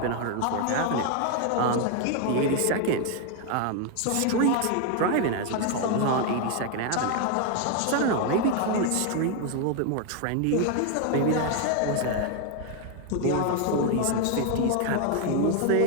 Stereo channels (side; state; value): both; different; correlation 0.01